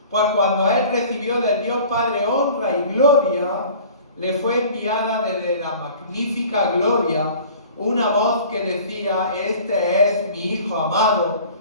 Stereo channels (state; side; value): inverted; both; correlation -0.45